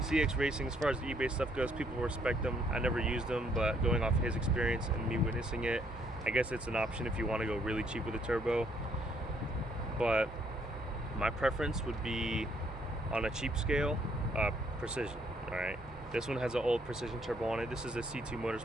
Racing, as far as the eBay stuff goes, people respect them. I never used them, but going off his experience and me witnessing it, I guess it's an option if you want to go really cheap with a turbo. But my preference would be, on a cheap scale, Precision. All right, this one has an old Precision turbo on it. This is a C2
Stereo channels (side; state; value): both; normal; correlation 0.69